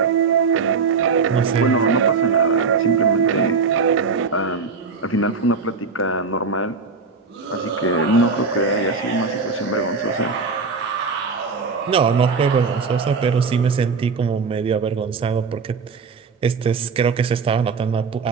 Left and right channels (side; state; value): left; quieter; 4.9 dB